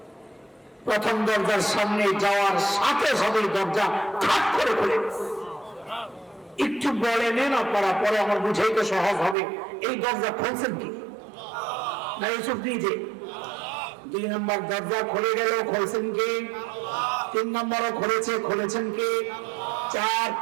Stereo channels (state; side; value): drops out; left; at 9.3 s